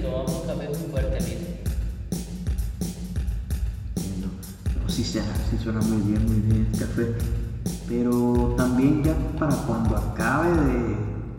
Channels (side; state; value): both; identical; correlation 1.00